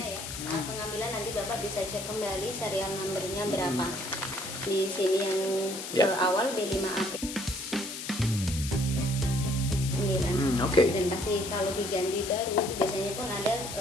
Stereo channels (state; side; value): noise; left; hiss, 8 dB below the sound